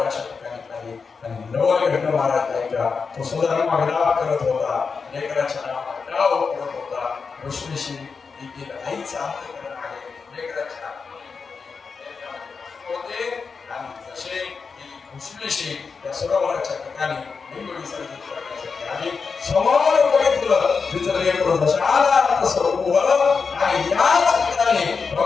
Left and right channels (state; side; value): quieter; right; 5.2 dB